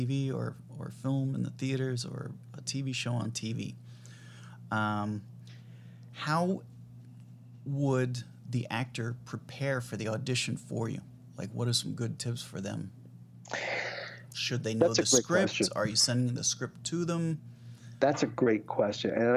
or film in the theaters or a TV show on TV. How would the actor prepare for the audition for you? Like, what are some good tips for them? Should they know the script? Question. Are you sending the script to them? That's a great question. And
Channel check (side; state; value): both; identical; correlation 1.00